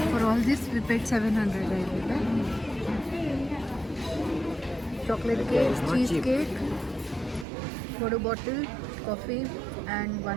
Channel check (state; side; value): drops out; left; at 7.5 s